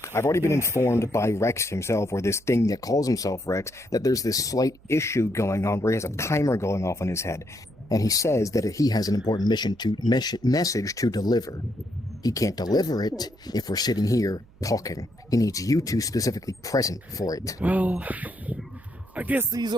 I've already been informed by Rex himself, or this thing that calls himself Rex, that there's this slight issue going on where he has a timer going off in his head. And he says that he has an important message to deliver. He can't deliver it if we're sitting here talking. He needs you two specifically present for it. Well, I guess these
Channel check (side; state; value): right; noise; hum, 27 dB below the sound